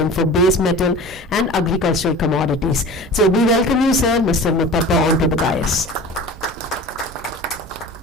for base metal and agricultural commodities. So we welcome you, sir, Mr. Muthappa, onto the dais.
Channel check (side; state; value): both; normal; correlation 0.38